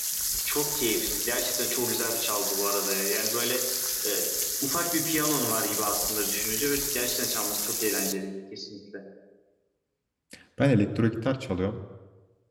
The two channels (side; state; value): both; identical; correlation 1.00